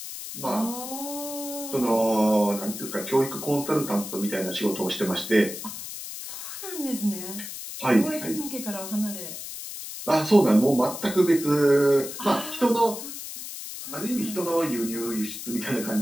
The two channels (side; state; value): left; noise; hiss, 9 dB below the sound